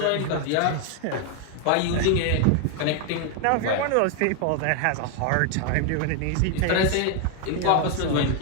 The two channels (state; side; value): different; both; correlation 0.01